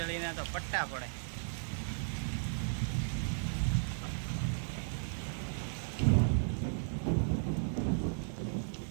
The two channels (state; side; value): silent; left; digital silence